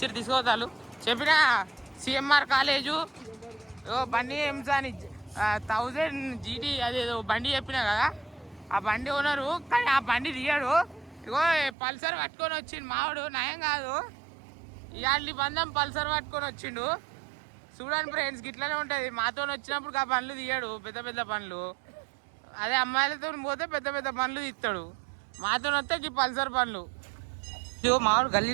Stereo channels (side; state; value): left; drops out; at 11.8 s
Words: తీసుకుపోతారు. చెప్పిన సిఎంఆర్ కాలేజు బండి ఎంసాని 1000 GT అదేదో బండి చెప్పినా కదా, ఆ బండి ఓనరు. కానీ ఆ బండి తీయడు. ఇగో పల్సర్ పట్టుకొని వచ్చిండు మావాడు. నయం కాదు, ఇవాళ బంధం పల్సర్ పట్టుకొని వచ్చిండు. చూడండి ఫ్రెండ్స్, గిట్లనే ఉంటుంది. మాతో వచ్చినప్పుడు ఆ పనులు తీయడు, పెద్ద పెద్ద పనులు. అదే అమ్మాయిలతో పోతే పెద్ద పెద్ద పనులు తీస్తాడు, మాతో వస్తే ఈ పల్సర్ పనులు. ఇగో మావాడు